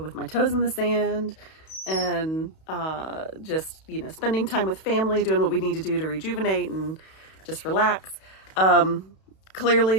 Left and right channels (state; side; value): late; right; 31 ms